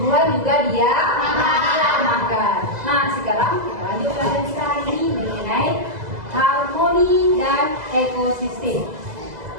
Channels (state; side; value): late; left; 2.0 ms